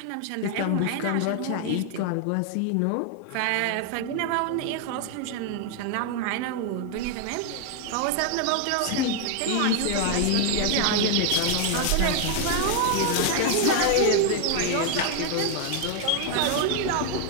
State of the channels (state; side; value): different; both; correlation 0.00